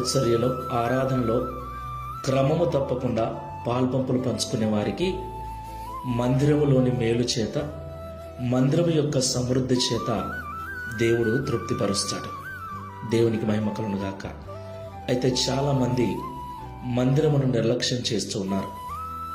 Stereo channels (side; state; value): both; identical; correlation 1.00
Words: ఆరాధనలో క్రమము తప్పకుండా పాల్పంపులు పంచుకునే వారికి మందిరములోని మేలు చేత, మందిరము యొక్క సమృద్ధి చేత దేవుడు తృప్తిపరుస్తాడు. దేవునికి మహిమ కలుగును గాక. అయితే చాలా మంది మందిరమును నిర్లక్ష్యం చేస్తూ ఉన్నారు.